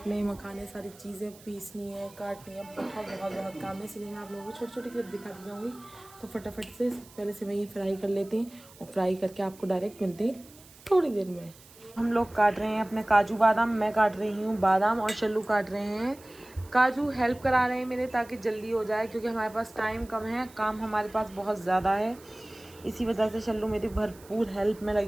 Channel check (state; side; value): noise; right; hiss, 23 dB below the sound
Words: मखाने, सारी चीज़ें पीसनी है, काटनी है, बहुत काम है, इसलिए मैं आप लोगों को छोटी छोटी क्लिप दिखाती जाऊँगी। तो फटाफट से पहले से वही फ्राई कर लेते हैं और फ्राई करके आपको डायरेक्ट मिलते हैं थोड़ी देर में। हम लोग काट रहे हैं अपने काजू बादाम, मैं काट रही हूँ बादाम और शल्लू काट रहे हैं काजू। हेल्प करा रहे हैं मेरे ताकि जल्दी हो जाए क्योंकि हमारे पास टाइम कम है, काम हमारे पास बहुत ज़्यादा है, इसी वजह से शल्लू मेरी भरपूर हेल्प में